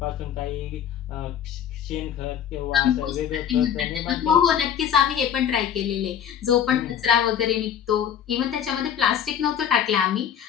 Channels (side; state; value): right; quieter; 8.9 dB